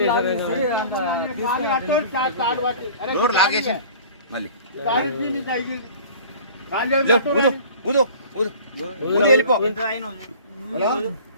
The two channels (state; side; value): inverted; both; correlation -0.44